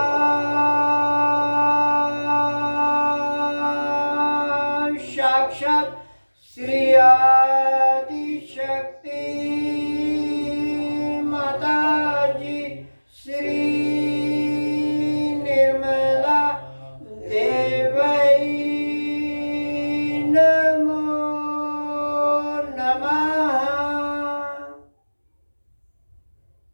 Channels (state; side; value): inverted; both; correlation -1.00